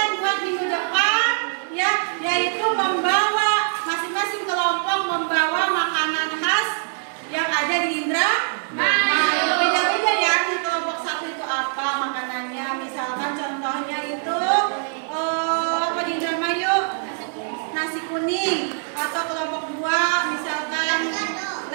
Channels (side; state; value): left; silent; 63 dB below the other